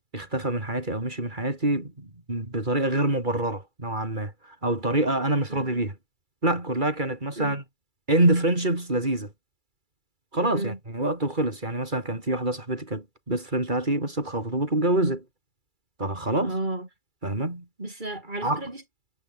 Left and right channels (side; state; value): left; late; 2.3 ms